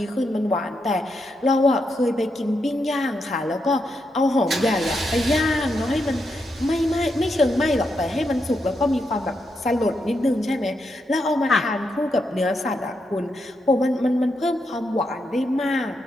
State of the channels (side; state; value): both; normal; correlation 0.83